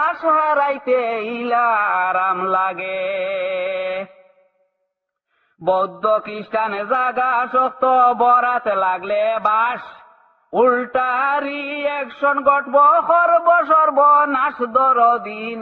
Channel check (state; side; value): identical; both; correlation 1.00